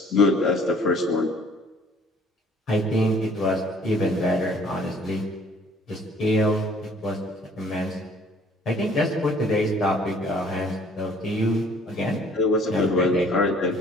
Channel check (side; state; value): both; normal; correlation 0.56